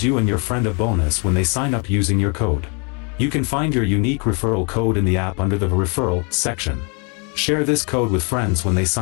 you and your friend a bonus when they sign up using your code. You can find your unique referral code in the app under the Referral section. Share this code with friends when they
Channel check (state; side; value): quieter; right; 35.0 dB